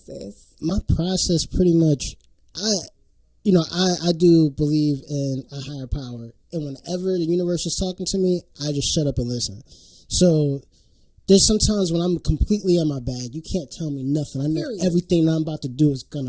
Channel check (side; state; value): both; identical; correlation 1.00